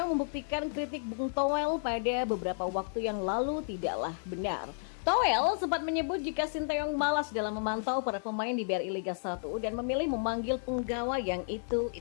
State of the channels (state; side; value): silent; right; digital silence